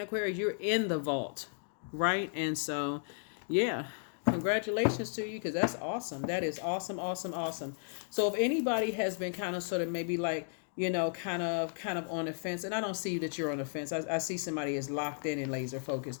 Aquarius? You're in the vault, right? And so, yeah, congratulations to you, because that's awesome. That is awesome, awesome, awesome. So if anybody has been kind of sort of maybe like, kind of on the fence, and I don't see that you're on the fence. I see somebody is locked in and laser focused.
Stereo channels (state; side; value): silent; right; digital silence